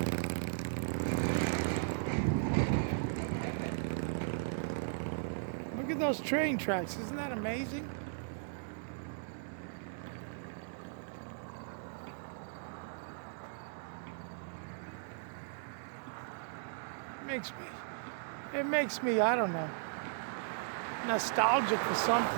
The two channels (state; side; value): silent; left; digital silence